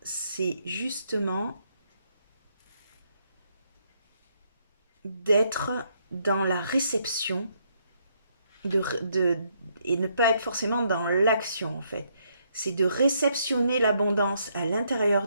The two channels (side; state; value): both; inverted; correlation -0.73